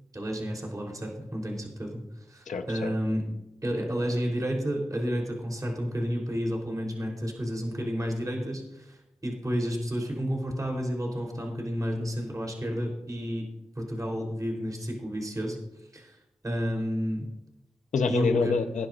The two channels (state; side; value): normal; both; correlation 0.90